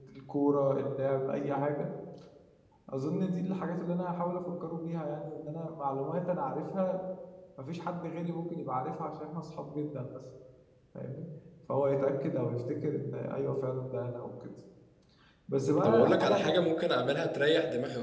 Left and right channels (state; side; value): identical; both; correlation 1.00